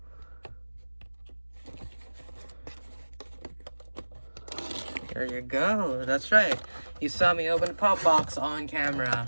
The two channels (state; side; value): inverted; both; correlation -1.00